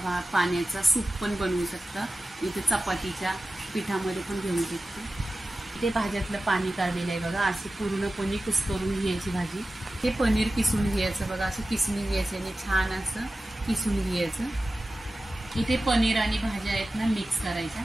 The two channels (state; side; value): normal; both; correlation 0.95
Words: पाण्याचा सूप पण बनवू शकता। इथे चपातीच्या पिठामध्ये पण घेऊ शकता। इथे भाज्यातलं पाणी काढलेलं आहे बघा, अशी पूर्णपणे कुस्करून घ्यायची भाजी। हे पनीर किसून घ्यायचं बघा, असं किसून घ्यायचं आणि छान असं किसून घ्यायचं। इथे पनीर आणि भाज्या आहेत ना मिक्स करायच्या।